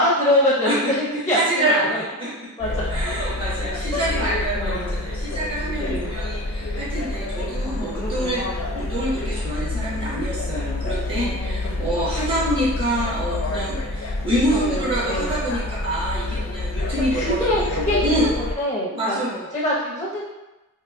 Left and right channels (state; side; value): normal; both; correlation 0.36